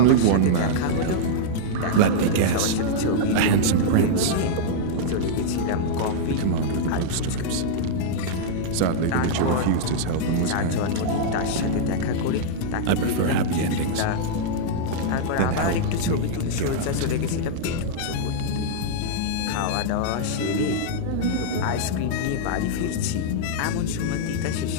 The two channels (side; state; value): both; different; correlation -0.02